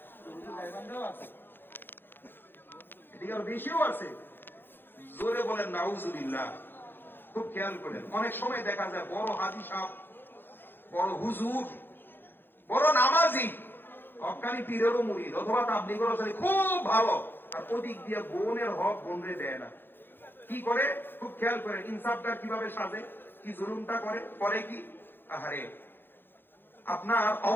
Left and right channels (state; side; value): late; right; 0.10 ms